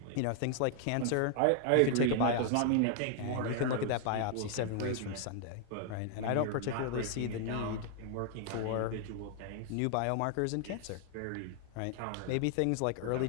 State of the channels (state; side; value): different; both; correlation 0.00